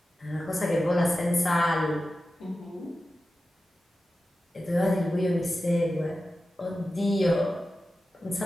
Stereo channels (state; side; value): normal; both; correlation 0.93